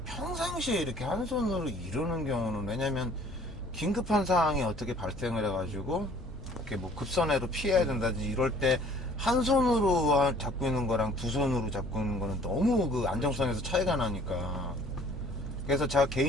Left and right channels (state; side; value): normal; both; correlation 0.54